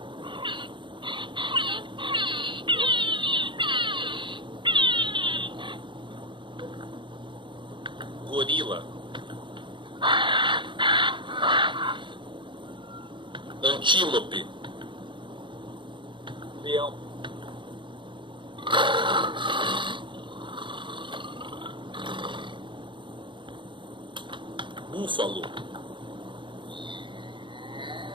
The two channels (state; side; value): late; left; 0.23 ms